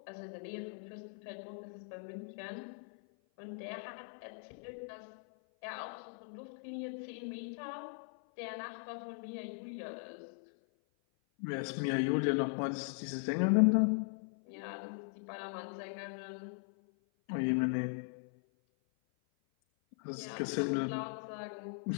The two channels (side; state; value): right; silent; 52 dB below the other